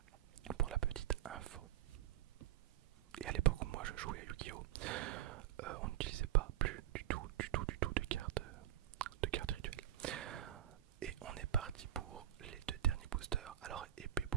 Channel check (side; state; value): left; quieter; 12.7 dB